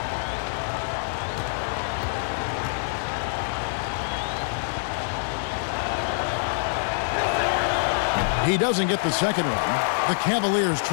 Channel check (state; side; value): silent; right; digital silence